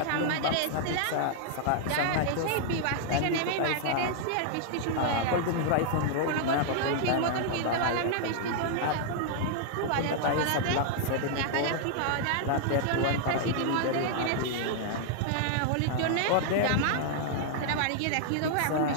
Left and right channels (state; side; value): different; both; correlation -0.01